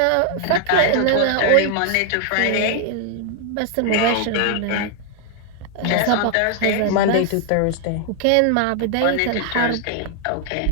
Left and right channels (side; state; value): both; different; correlation 0.00